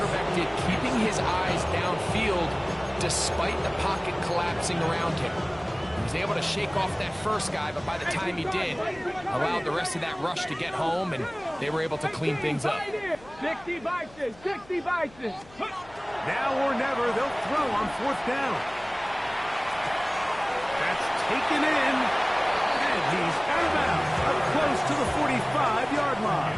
did keeping his eyes downfield despite the pocket collapsing around him. He was able to shake off that first guy, but by the time he did, allowed the rest of that rush to get home, and they were able to clean things up. 60 Bison, 60 Bison. Now or never, they'll throw on fourth down. That's taken in, and he's out of bounds, up close to the 45-yard line.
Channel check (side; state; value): left; noise; hum, 23 dB below the sound